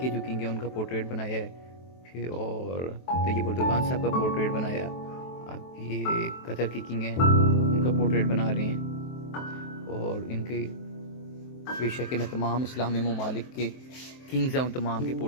जो किंग हैं उनका पोर्ट्रेट बनाया है, फिर और तैयब उर्दुगान साहब का पोर्ट्रेट बनाया। अब ये कतर के किंग हैं उनका पोर्ट्रेट बना रहे हैं, और इनके बेशक मैं तमाम इस्लामी ममालिक के किंग्स हैं उन तमाम के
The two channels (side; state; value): right; late; 23 ms